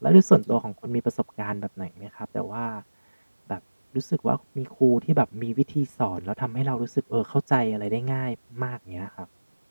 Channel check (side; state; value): both; inverted; correlation -1.00